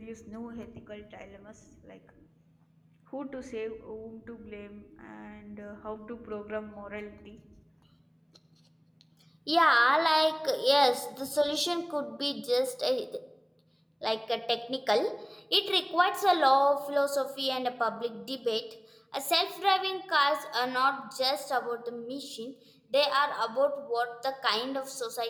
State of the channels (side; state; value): both; identical; correlation 1.00